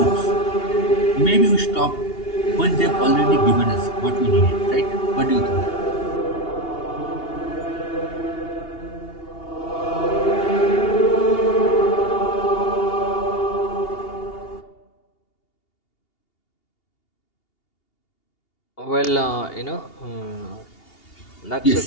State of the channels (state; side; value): late; right; 2.8 ms